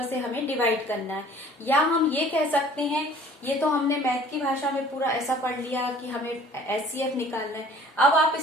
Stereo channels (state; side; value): normal; both; correlation 0.51